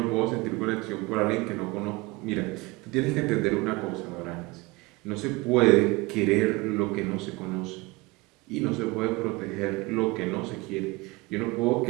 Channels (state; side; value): quieter; left; 23.4 dB